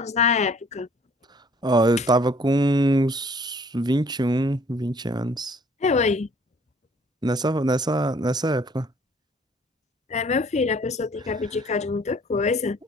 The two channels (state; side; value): normal; both; correlation 0.57